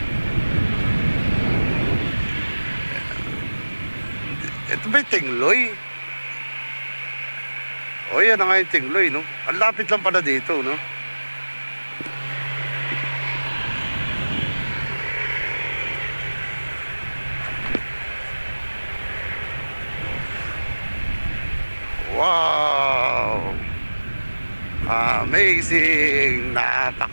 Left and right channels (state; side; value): inverted; both; correlation -1.00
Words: Ito ba yung Tingloy? O yan na nga yung Tingloy, no? Ang lapit lang pala dito, no? Wow! Amazing!